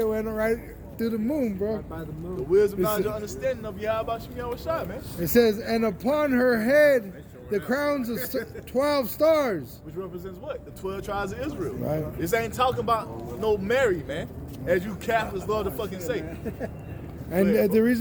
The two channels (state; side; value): identical; both; correlation 1.00